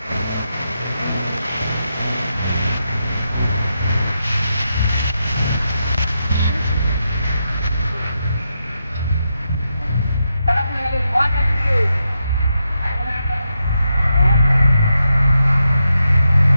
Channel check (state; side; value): inverted; both; correlation -0.85